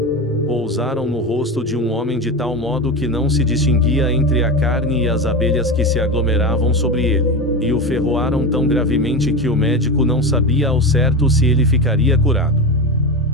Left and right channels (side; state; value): both; normal; correlation 0.21